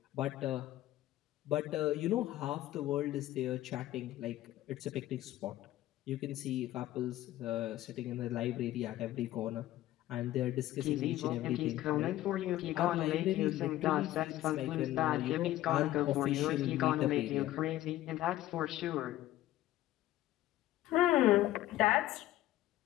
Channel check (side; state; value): right; quieter; 14.8 dB